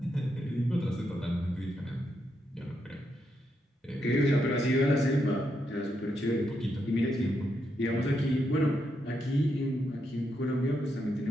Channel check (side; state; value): both; normal; correlation 0.81